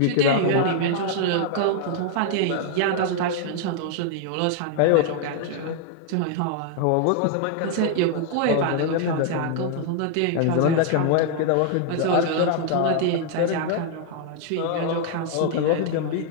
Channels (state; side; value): different; both; correlation 0.00